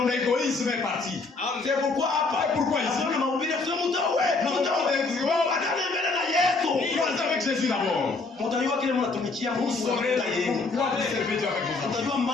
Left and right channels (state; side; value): quieter; right; 3.8 dB